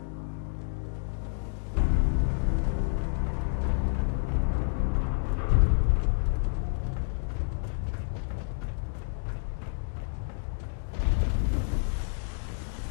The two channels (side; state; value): right; silent; digital silence